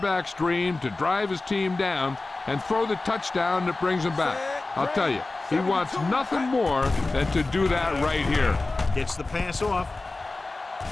dream to drive his team down and throw the touchdown that brings him back. I'll tell you, he wants nothing more than to do that right here. Gets the pass off.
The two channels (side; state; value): right; quieter; 3.3 dB